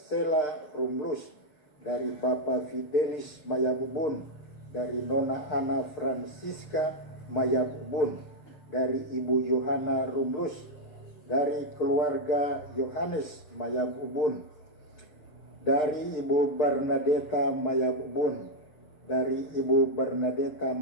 Rumlus, dari Bapak Fidelis Mayabubun, dari Nona Ana Francisca Mayabubun, dari Ibu Yohana Rumlus, dari keluarga Yohanes Mayab Ubun, dari Ibu Bernadetta Mayab Ubun, dari Ibu Bernadetta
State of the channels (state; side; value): late; right; 6.6 ms